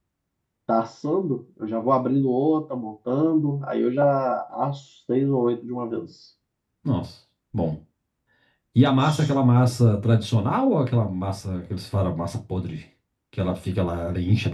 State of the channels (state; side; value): identical; both; correlation 1.00